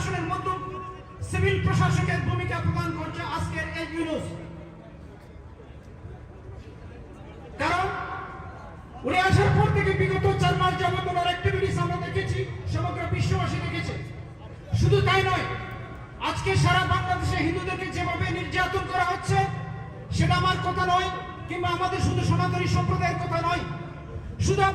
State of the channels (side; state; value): both; identical; correlation 1.00